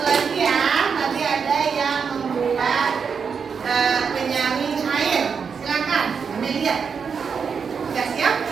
lagi ya, tadi ada yang membuat penyaring air. Silakan, Amelia. Sudah siap?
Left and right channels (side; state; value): left; quieter; 6.1 dB